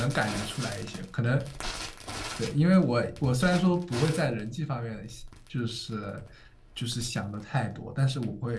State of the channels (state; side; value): identical; both; correlation 1.00